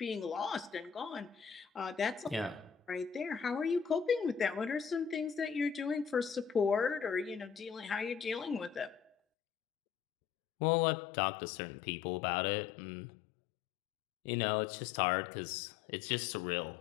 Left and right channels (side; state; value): right; drops out; at 9.2 s